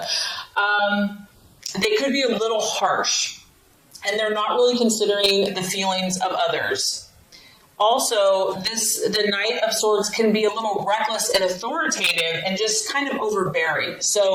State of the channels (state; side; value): identical; both; correlation 1.00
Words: They could be a little harsh, and they're not really considering the feelings of others. Also, the Knight of Swords can be a little reckless and authoritative and just kind of overbearing.